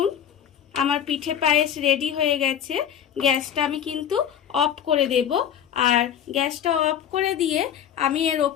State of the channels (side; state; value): right; quieter; 9.5 dB